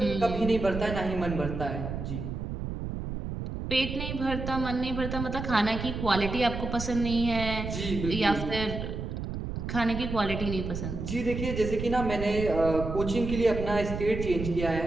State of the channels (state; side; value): noise; right; rumble, 5 dB below the sound